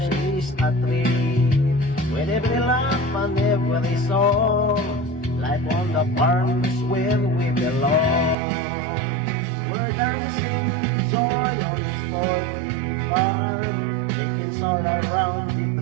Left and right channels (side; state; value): left; drops out; at 8.3 s